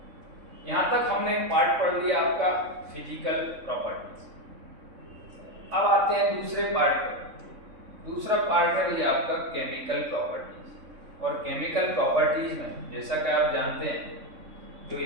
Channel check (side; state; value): left; late; 3.6 ms